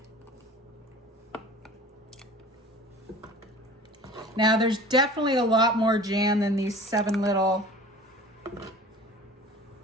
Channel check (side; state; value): both; normal; correlation 0.42